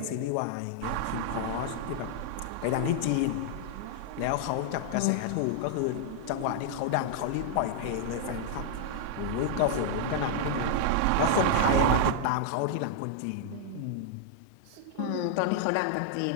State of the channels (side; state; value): both; different; correlation -0.01